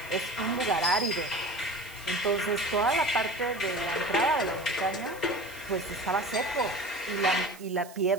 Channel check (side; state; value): right; noise; hiss, 20 dB below the sound